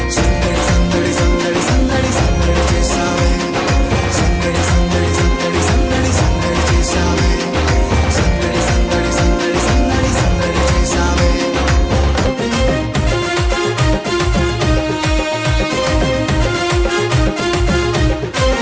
సందడి సందడి సందడి సందడి సందడి చేశామే, సందడి సందడి సందడి సందడి సందడి చేశామే, సందడి సందడి సందడి సందడి సందడి చేశామే.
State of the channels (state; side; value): identical; both; correlation 1.00